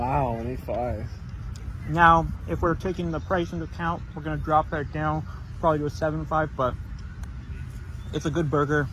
an 8.5. Now, if we're taking the price into account, we're going to drop that down probably to a 7.5, but it's a good burger.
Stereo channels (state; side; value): identical; both; correlation 1.00